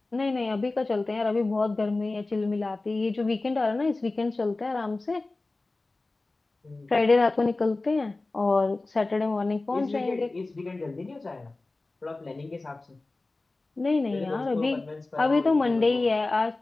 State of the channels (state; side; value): quieter; right; 3.2 dB